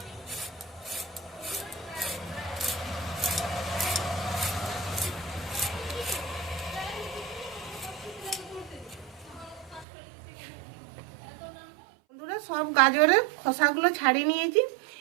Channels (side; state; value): left; drops out; at 9.9 s